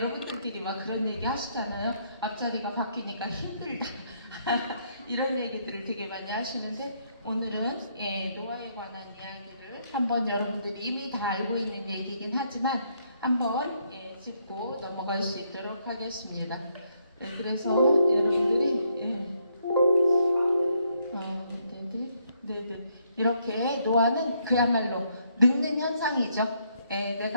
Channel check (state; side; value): inverted; both; correlation -0.73